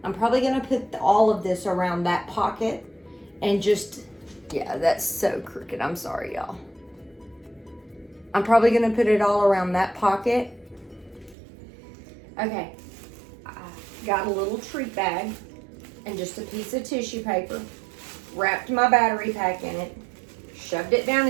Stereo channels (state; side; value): drops out; left; at 11.4 s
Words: I'm probably gonna put all of this around that pocket and just, yeah, that's so crooked, I'm sorry y'all. I'm probably gonna put it all around that pocket. Okay, I got a little treat bag and just a piece of tissue paper, wrapped my battery pack in it, shoved it down